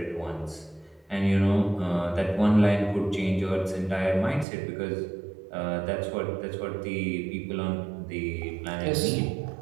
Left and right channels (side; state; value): left; drops out; at 4.5 s